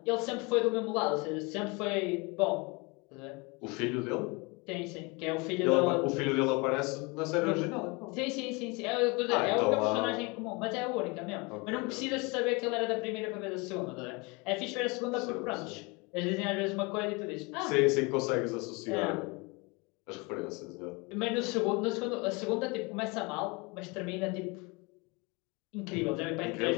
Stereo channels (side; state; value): right; quieter; 27.8 dB